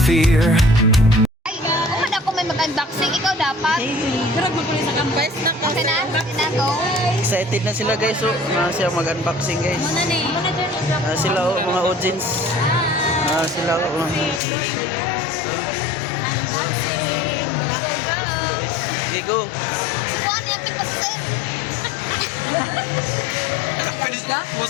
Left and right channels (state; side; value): drops out; right; at 14.4 s